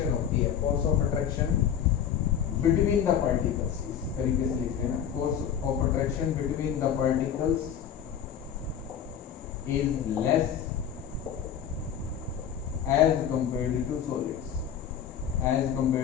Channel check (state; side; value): quieter; right; 8.7 dB